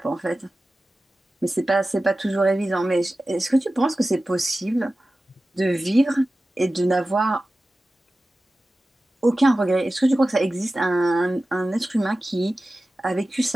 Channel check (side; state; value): both; normal; correlation 0.95